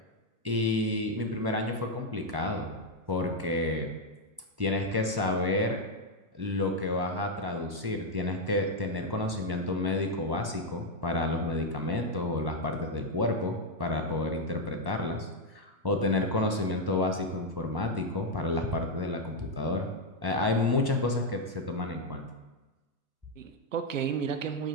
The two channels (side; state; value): left; late; 1.1 ms